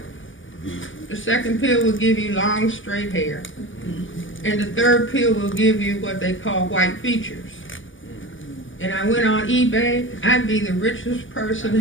the second pill will give you long straight hair, and the third pill will give you what they call white features. And I went on eBay, I'd be the richest person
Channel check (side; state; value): right; late; 0.57 ms